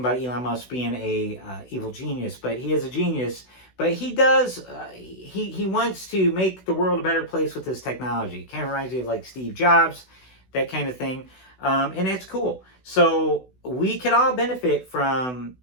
Elon Musk being a evil genius, but he is a genius. But he does, he wants to make the world a better place with his technology. Kind of reminds me of like Steve Jobs, that kind of thing. And that's cool. So we could all benefit from,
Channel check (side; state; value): right; late; 16 ms